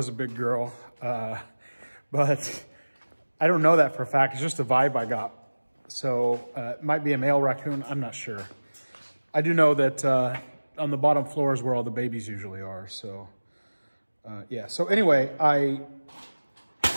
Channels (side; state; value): both; inverted; correlation -1.00